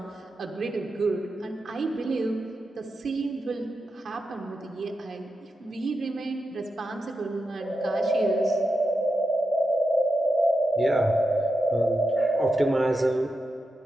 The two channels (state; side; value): normal; both; correlation 0.88